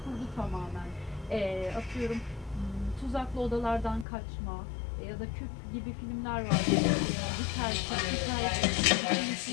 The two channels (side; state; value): right; drops out; at 4.0 s